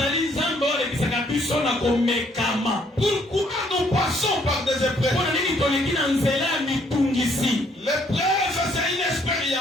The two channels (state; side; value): normal; both; correlation 0.66